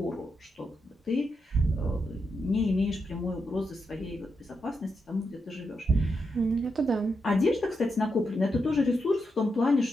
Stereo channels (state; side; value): normal; both; correlation 0.84